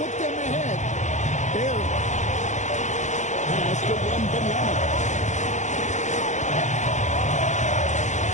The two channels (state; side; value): late; right; 0.35 ms